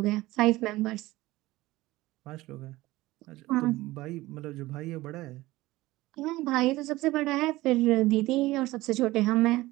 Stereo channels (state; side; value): quieter; left; 18.5 dB